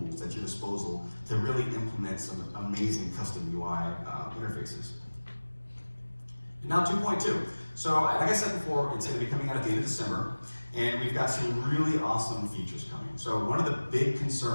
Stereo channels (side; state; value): both; inverted; correlation -1.00